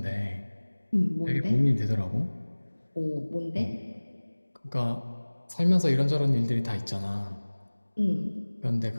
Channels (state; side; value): inverted; both; correlation -1.00